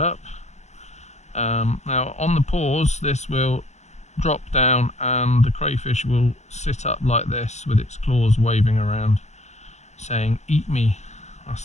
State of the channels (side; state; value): right; late; 0.33 ms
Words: Now on the paws this will drop down and the crayfish will sit up like this with its claws waving around saying eat me. That's